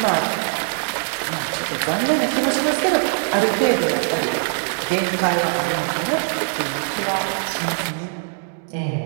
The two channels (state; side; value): silent; left; 55 dB below the other